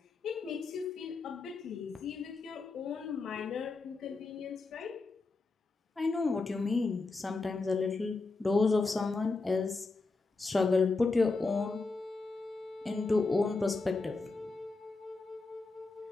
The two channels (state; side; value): quieter; right; 3.7 dB